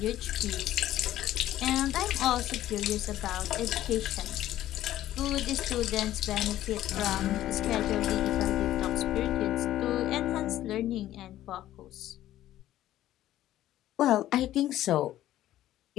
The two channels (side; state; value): right; quieter; 13.5 dB